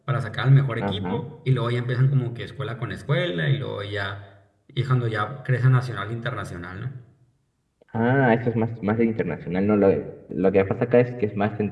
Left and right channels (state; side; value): identical; both; correlation 1.00